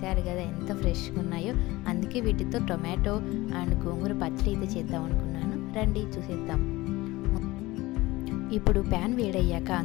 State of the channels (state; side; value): quieter; right; 19.7 dB